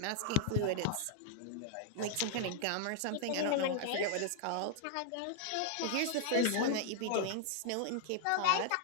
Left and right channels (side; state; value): both; different; correlation -0.01